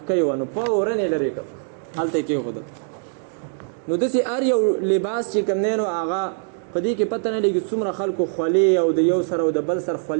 وه، نو فورن یې لرې کړ، هلته یې کېښودل. نو داسې هر یو لباس چې کوم دی نو هغه په دې کې پته نه لګي څومره خلکو خولې او د یو سره او د بل سر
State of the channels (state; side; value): silent; left; digital silence